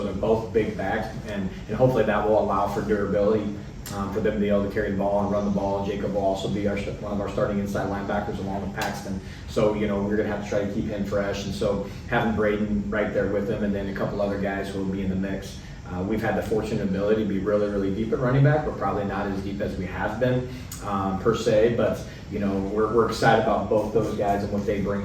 they're both big backs, and hopefully that will allow for durability for them to be able to carry the ball and run the ball. Jacob will also be one of our starting inside linebackers along with Paxton. So, we're going to have to try to keep him fresh, and so having Braden right there with him, and then a couple other guys who will be in the mix. We've had the fortunate ability to be really, really deep at running back. We're probably not as deep as we have been per se, but we're excited about both those guys and what they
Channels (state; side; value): identical; both; correlation 1.00